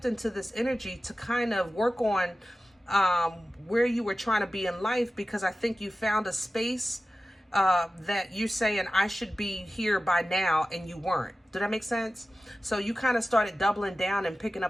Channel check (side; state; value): both; normal; correlation 0.95